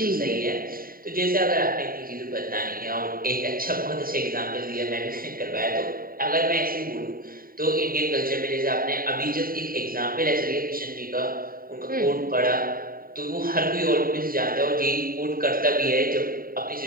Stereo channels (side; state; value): left; late; 0.42 ms